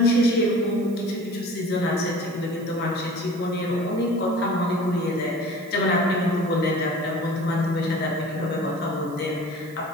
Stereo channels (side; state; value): right; noise; hiss, 24 dB below the sound